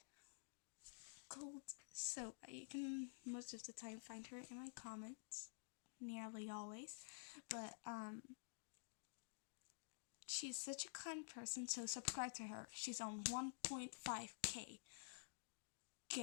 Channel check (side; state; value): right; silent; digital silence